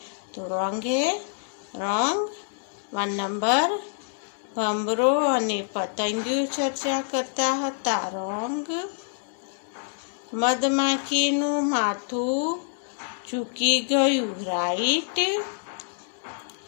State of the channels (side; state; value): right; silent; digital silence